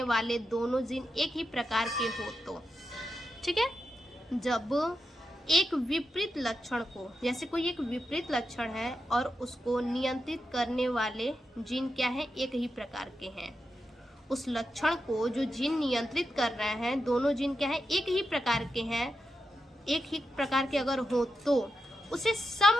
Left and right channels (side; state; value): both; normal; correlation 0.88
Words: वाले दोनों जीन एक ही प्रकार के हो तो, ठीक है। जब एक विपरीत लक्षण को, जैसे कोई एक विपरीत लक्षण है और उसको नियंत्रित करने वाले जीन क्या है, एक ही प्रकार के हैं। उस लक्षण को जो जीन नियंत्रित कर रहे हैं, दोनों जीन क्या है, एक ही प्रकार के हैं, एक ही प्रकार के अगर हो तो उसे